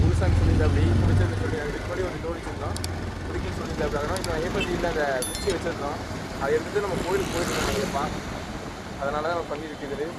குருசாமி சொல்லியிருந்தாப்படி பிடிச்சது சொல்லி அதுக்கு முன்னாடி ஒரு ஜோடிச்சிருந்தோம். பிடிக்குன்னு சொல்லியிருந்தாப்படி. அதனால் இப்போ ஐயப்பன் அந்த குச்சி வச்சுருந்தோம். அதை எடுத்துகிட்டு நம்ம கோயிலுக்கு போயிருக்கோம் ஐயப்பா. அதனால தான் நம்ம பண்ணியிருக்குது.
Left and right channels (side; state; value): both; identical; correlation 1.00